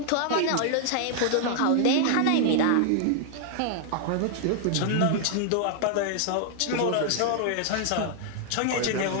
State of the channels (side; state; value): both; different; correlation 0.00